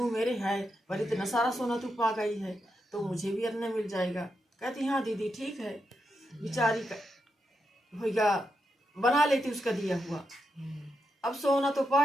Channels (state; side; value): normal; both; correlation 0.85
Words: मेरे है पर इतना सारा सोना तू पा गई है तो मुझे भी अपना मिल जाएगा। कहती हाँ दीदी ठीक है। बेचारी भैया बना लेती उसका दिया हुआ। अब सोना तो